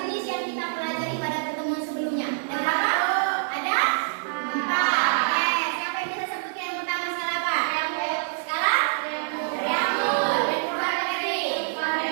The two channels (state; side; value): silent; left; digital silence